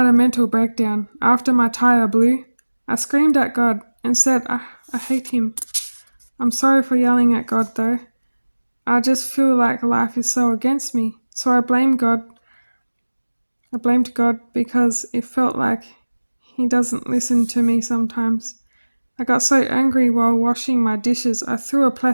a mental breakdown. After my tire blew, I screamed at God and said, I hate him. I'm sorry for yelling at God though. I just feel like life is so against me. So I blamed God. I blamed God because it felt like he doesn't listen to me sometimes. I got so angry while washing my dishes, I threw a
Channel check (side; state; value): both; inverted; correlation -1.00